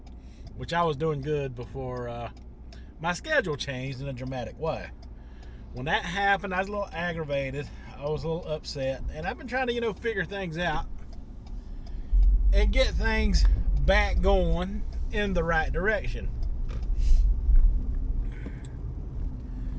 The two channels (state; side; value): identical; both; correlation 1.00